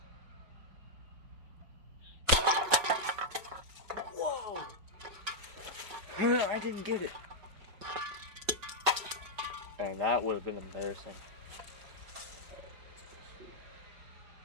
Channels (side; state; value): left; late; 5.3 ms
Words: Whoa! I didn't get it. And that would have been embarrassing.